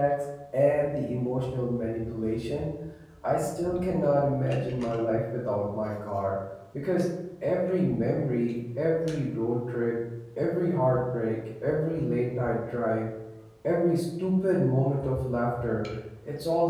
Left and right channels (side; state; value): both; identical; correlation 1.00